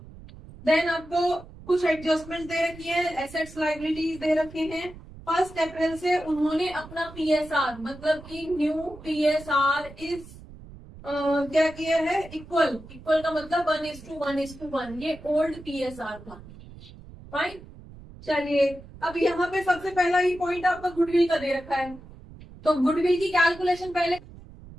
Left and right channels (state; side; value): noise; right; rumble, 18 dB below the sound